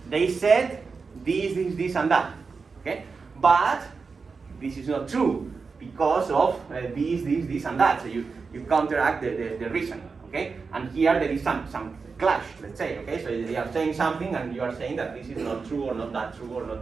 they said this, and that, okay, but this is not true because of this, and that. So you counteract the reason, okay, and here there is some clash, let's say, okay? So they are saying something and you are saying that this is not true or not that true or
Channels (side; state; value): left; quieter; 4.8 dB